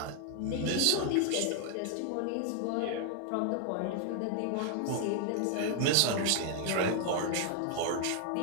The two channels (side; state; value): both; different; correlation 0.00